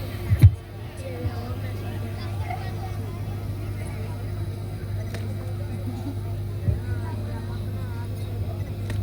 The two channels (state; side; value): identical; both; correlation 1.00